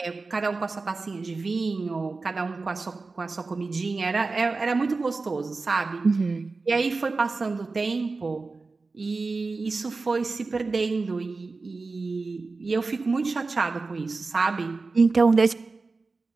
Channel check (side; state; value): left; quieter; 3.9 dB